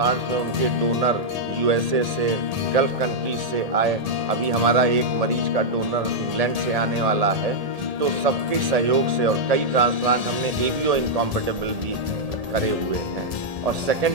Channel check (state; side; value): late; left; 1.8 ms